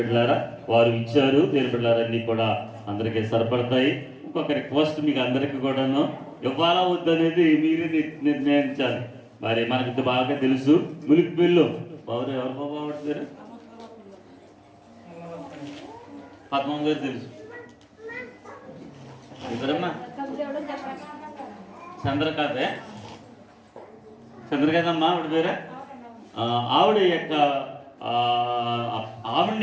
వారు ఇచ్చారు. దేని బిడ్డలారా అన్నీ కూడా అందరికీ సరిపడతాయి. ఇంకొక రిక్వెస్ట్ మీకు అందరికీ కూడాను ఇవ్వాలా వద్దనేది మీరే నిర్ణయించాలి. మరి మనకి బాగా తెలుసు ములికి బిల్లు ఎవరు బాగుంటారు? పద్మం గారు తెలుసు. ఇద్దరమ్మా చంద్రకాంతమ్మా ఆవిడ పేరే. ఆవిడ యొక్క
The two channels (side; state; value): both; identical; correlation 1.00